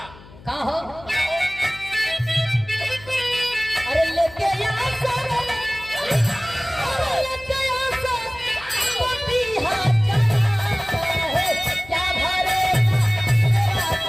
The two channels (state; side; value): noise; left; hum, 21 dB below the sound